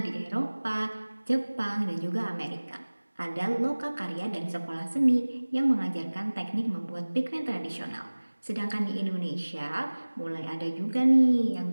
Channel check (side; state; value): both; inverted; correlation -1.00